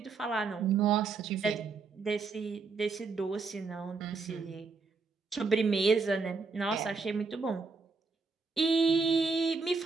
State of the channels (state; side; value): quieter; left; 4.4 dB